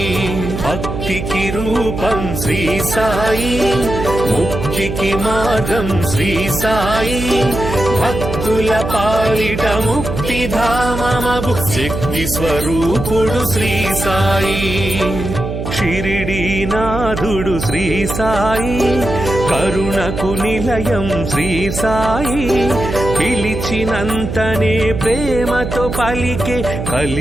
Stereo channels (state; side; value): noise; right; hum, 5 dB below the sound